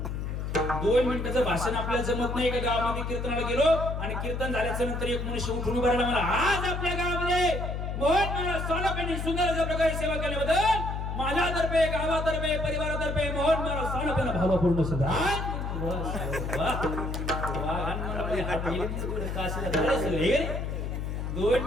2 मिनिटाचं भाषण आपल्याला जमत नाही. एका गावामध्ये कीर्तनाला गेलो आणि कीर्तन झाल्याच्या नंतर एक मनुष्य उठून उभा राहिला. मला आज आपल्या गावामध्ये मोहन मला सानपेंनी सुंदर अशा प्रकारे सेवा केल्याबद्दल माझ्यातर्फे, गावातर्फे, परिवारातर्फे मोहन मला सानपेंना भावपूर्ण सुद्धा. 2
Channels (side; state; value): left; noise; hum, 3 dB below the sound